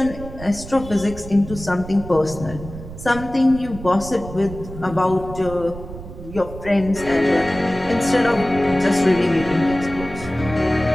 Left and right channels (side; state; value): right; noise; rumble, 12 dB below the sound